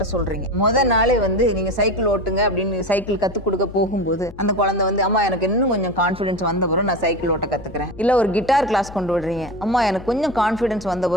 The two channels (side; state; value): left; noise; hum, 17 dB below the sound